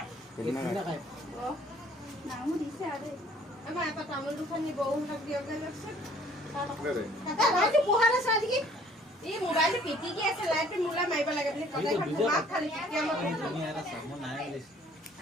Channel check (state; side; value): normal; both; correlation 0.56